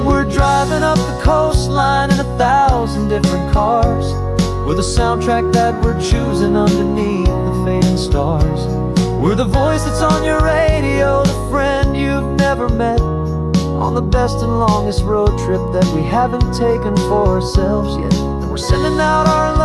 we're driving up the coastline in 1,000 different cars, We're the soundtrack that we're choosing underneath the fading stars. We're the voice that's on your radio, the friend you've never met, on the best and longest road trip that we haven't taken for ourselves yet. And we're sending out our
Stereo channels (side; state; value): both; identical; correlation 1.00